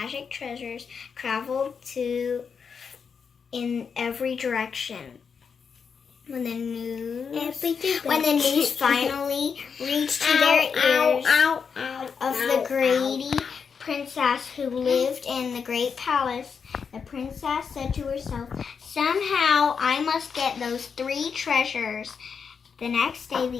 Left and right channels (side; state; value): right; quieter; 6.2 dB